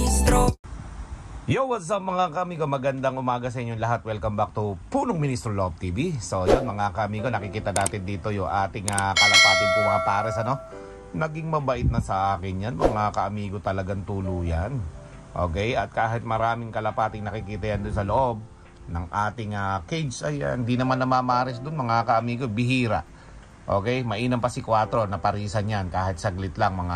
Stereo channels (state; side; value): identical; both; correlation 1.00